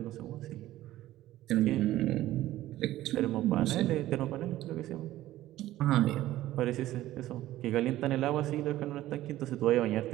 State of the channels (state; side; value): quieter; left; 14.9 dB